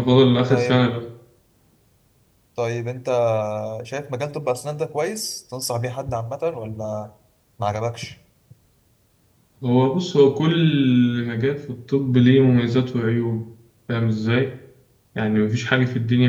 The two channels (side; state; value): both; identical; correlation 1.00